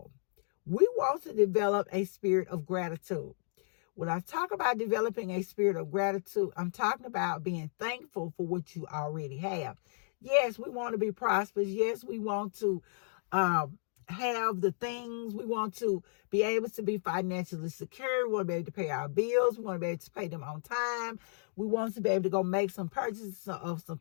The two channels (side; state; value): right; silent; digital silence